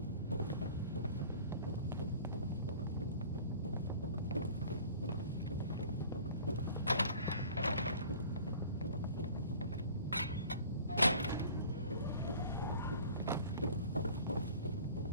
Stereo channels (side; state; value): both; inverted; correlation -0.46